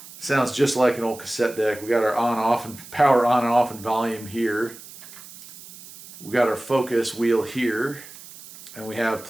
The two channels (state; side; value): noise; right; hiss, 17 dB below the sound